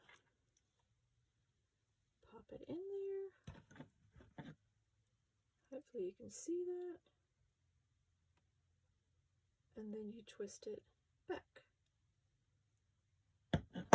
Pop it in there. Hopefully you can see that. And then you twist it back.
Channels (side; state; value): both; identical; correlation 1.00